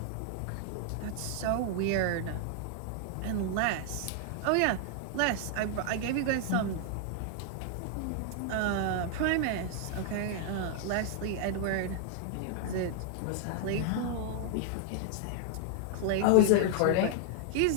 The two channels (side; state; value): both; different; correlation 0.00